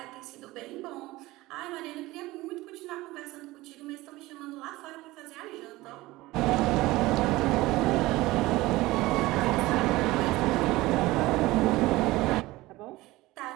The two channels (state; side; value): quieter; left; 19.1 dB